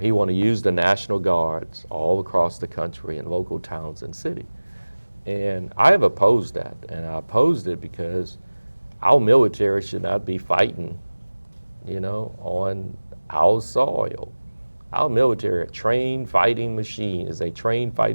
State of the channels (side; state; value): both; inverted; correlation -1.00